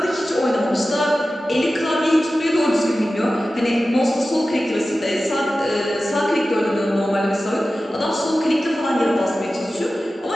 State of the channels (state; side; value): normal; both; correlation 0.95